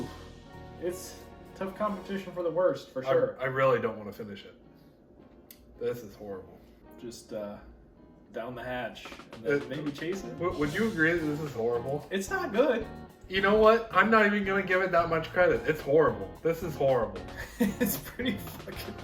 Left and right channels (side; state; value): both; identical; correlation 1.00